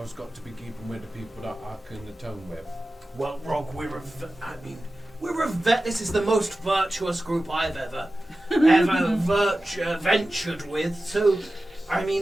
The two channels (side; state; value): both; normal; correlation 0.95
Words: got to be keeping with the people that I can atone with. Well, Rogg, this is the most virtuous group I've ever ventured with. So, I